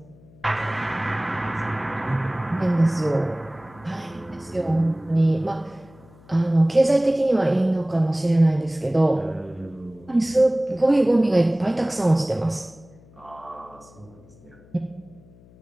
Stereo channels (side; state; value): left; noise; hum, 25 dB below the sound